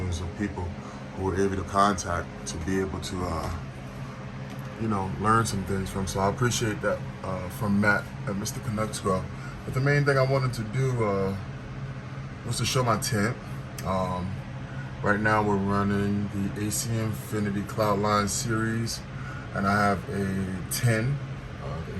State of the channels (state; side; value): identical; both; correlation 1.00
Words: of people who were able to contact to be able to, learn some things from. So I appreciate that from Matt at Mr. Canucks Grill. But the main thing I wanted to do was to show my tent. Right now we're running the AC Infinity Cloudline series, and I have a 10, the